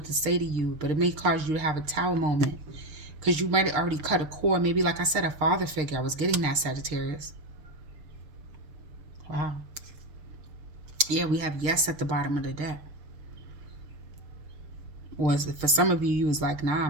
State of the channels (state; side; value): late; left; 6.5 ms